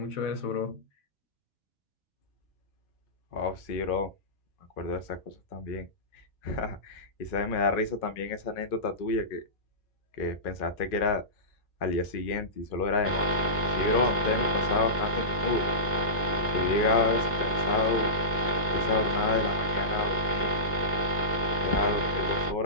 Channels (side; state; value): both; normal; correlation -0.19